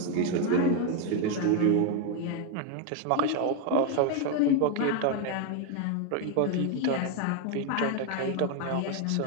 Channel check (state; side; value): different; both; correlation 0.01